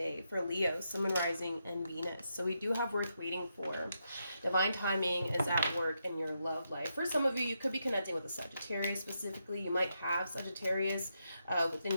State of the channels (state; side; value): inverted; both; correlation -0.83